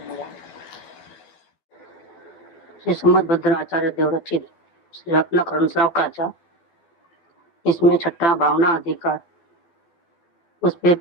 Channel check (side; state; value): right; late; 12 ms